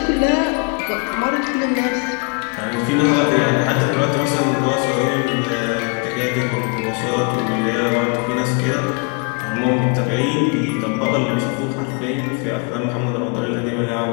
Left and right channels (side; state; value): right; quieter; 35.4 dB